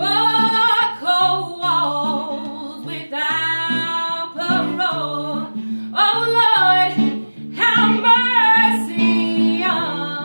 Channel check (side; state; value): both; inverted; correlation -1.00